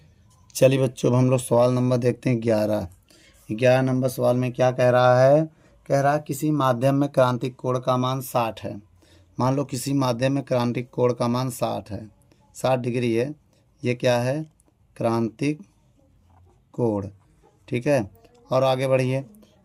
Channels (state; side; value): identical; both; correlation 1.00